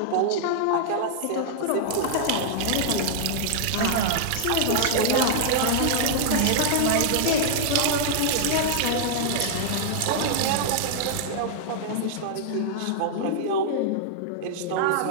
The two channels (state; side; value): different; both; correlation -0.01